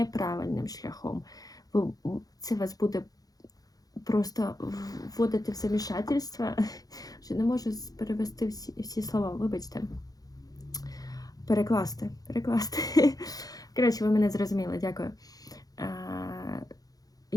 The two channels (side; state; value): right; late; 0.18 ms